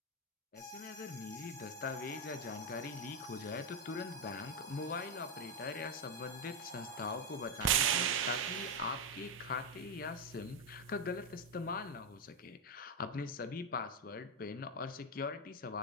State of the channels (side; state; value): both; normal; correlation 0.05